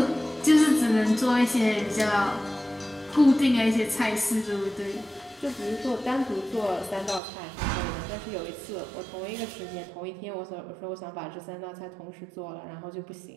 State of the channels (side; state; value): left; drops out; at 7.2 s